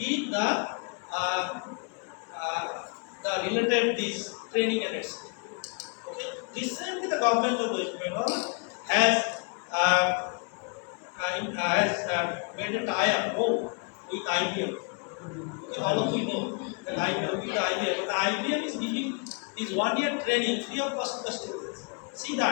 the related this training and etc. Okay. Recently, the government of West Bengal has made a tie-up with IBM. Okay, all of you know that with IBM. But IBM is giving this 1 year training free of cost to the students. See, the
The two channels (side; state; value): right; quieter; 36.2 dB